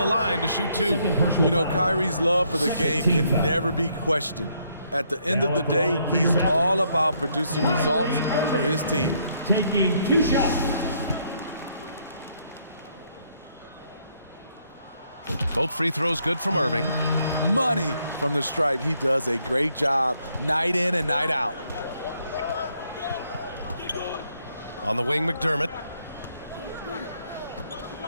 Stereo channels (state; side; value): inverted; both; correlation -0.71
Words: line to shoot two. You know, Kyrie's love for the game can never be questioned. At the end of the day, he's all about producing results for his team. Taking two shots. Both free throws good from Irving. Money from the stripe. He does a great job night in and night out. On the wing, McDermott.